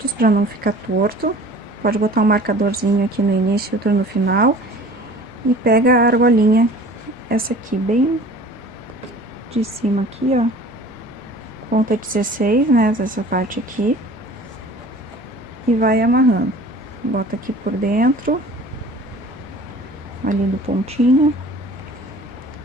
pra não ficar torto. Pode botar um marcadorzinho aqui no início e outro no final. E pega a argolinha, essa aqui bem de cima aqui, ó. Ponta 16, né, essa parte aqui. E vai amarrando. Bota aqui por dentro, ali do pontinho,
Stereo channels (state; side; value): normal; both; correlation 0.45